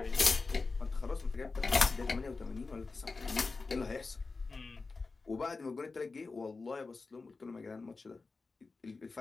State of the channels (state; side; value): quieter; right; 4.0 dB